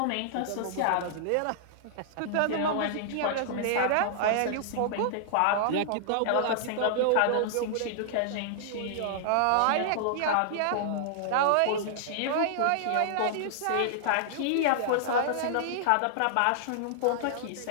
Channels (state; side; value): different; both; correlation -0.01